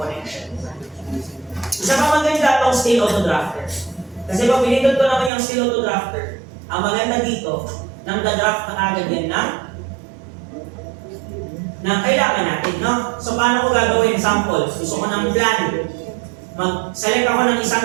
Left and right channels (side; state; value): left; drops out; at 5.3 s